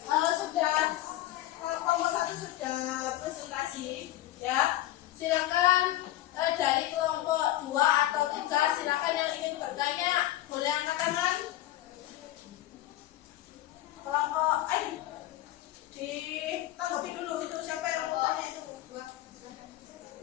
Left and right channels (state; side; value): quieter; right; 14.9 dB